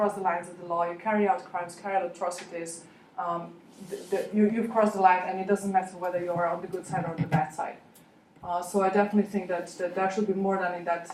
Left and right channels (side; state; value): both; identical; correlation 1.00